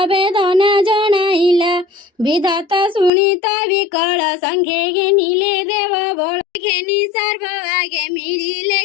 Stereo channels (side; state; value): right; drops out; at 3.1 s